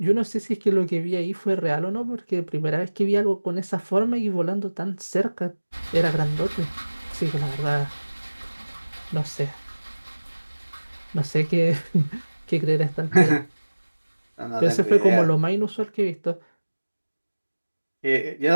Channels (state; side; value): inverted; both; correlation -1.00